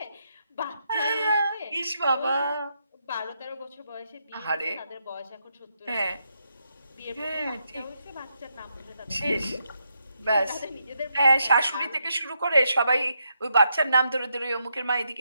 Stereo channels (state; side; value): inverted; both; correlation -0.80